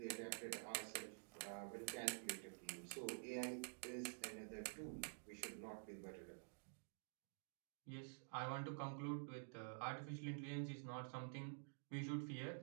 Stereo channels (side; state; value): left; silent; digital silence